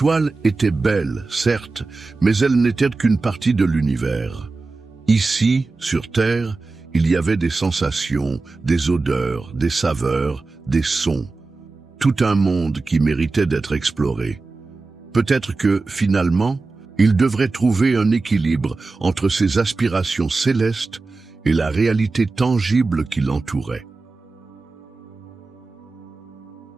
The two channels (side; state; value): left; quieter; 3.7 dB